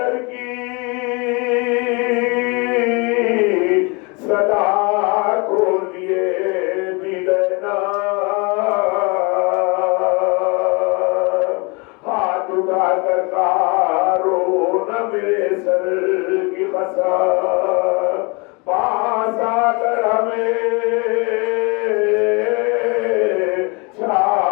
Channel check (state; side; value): quieter; right; 29.8 dB